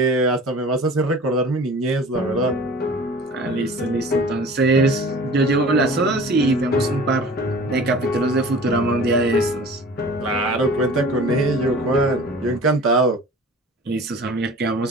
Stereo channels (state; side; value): normal; both; correlation 0.42